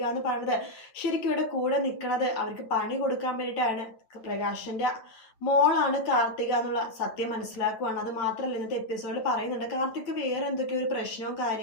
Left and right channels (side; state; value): right; late; 9.0 ms